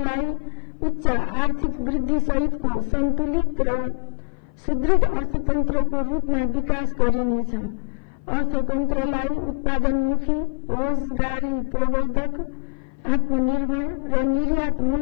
उच्च आर्थिक वृद्धि सहितको सन्तुलित र सुदृढ अर्थतन्त्रको रूपमा विकास गरिनेछ। अर्थतन्त्रलाई उत्पादनमुखी, रोजगारी प्रवर्धक, आत्मनिर्भर र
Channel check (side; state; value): right; silent; 57 dB below the other